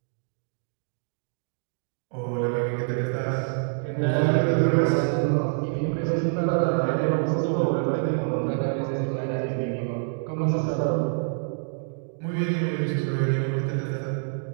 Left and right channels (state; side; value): silent; left; digital silence